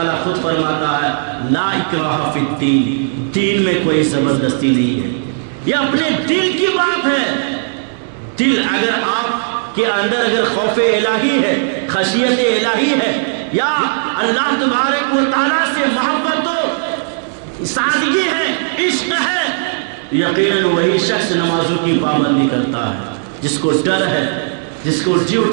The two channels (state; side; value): silent; left; 67 dB below the other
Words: خود فرماتا ہے لا اکراہ فی الدین، دین میں کوئی زبردستی نہیں ہے۔ یہ اپنے دل کی بات ہے۔ دل اگر آپ کے اندر اگر خوف الہی ہے، خشیت الہی ہے، یا اللہ تبارک و تعالیٰ سے محبت و سادگی ہے، عشق ہے، یقیناً وہی شخص نمازوں کی پابندی کرتا ہے، جس کو ڈر ہے، جس کو